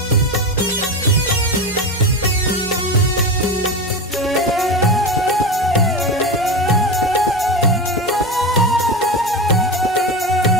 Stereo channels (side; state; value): both; normal; correlation 0.21